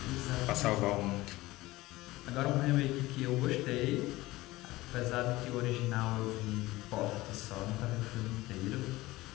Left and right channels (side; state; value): right; quieter; 18.8 dB